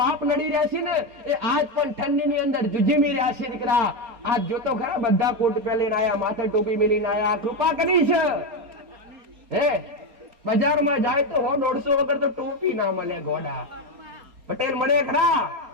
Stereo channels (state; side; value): late; left; 4.3 ms